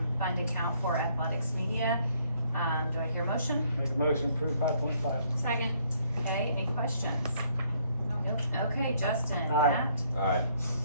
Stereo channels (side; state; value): both; inverted; correlation -0.66